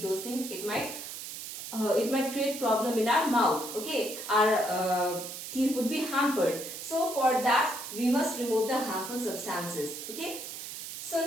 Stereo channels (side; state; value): right; noise; hiss, 9 dB below the sound